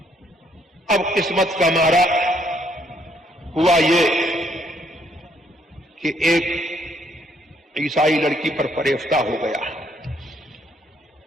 اب قسمت کا مارا ہوا یہ کہ ایک عیسائی لڑکی پر فریفتہ ہو گیا،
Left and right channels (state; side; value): normal; both; correlation 0.69